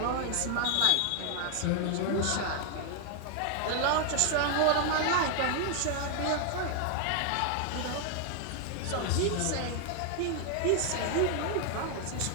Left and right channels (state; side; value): different; both; correlation 0.00